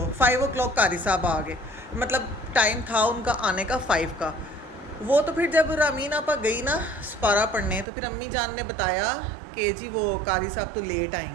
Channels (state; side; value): drops out; left; at 7.9 s